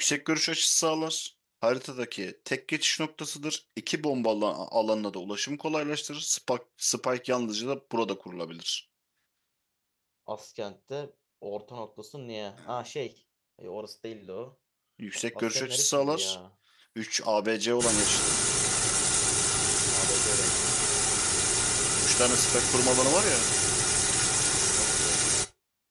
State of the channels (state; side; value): identical; both; correlation 1.00